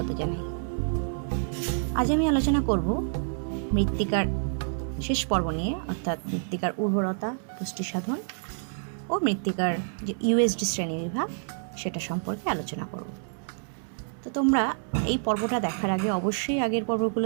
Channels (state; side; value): silent; left; 59 dB below the other